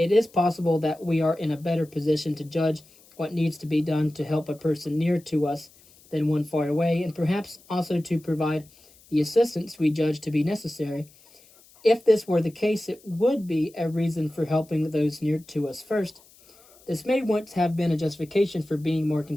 is possible that we are in a better position to judge what needs to be done to help a person near to us than one far away, and perhaps also to provide the assistance we judge to be necessary. If this were the case, it would be a reason for helping those near to us first. This may once have been a justification for being more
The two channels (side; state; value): left; noise; hiss, 27 dB below the sound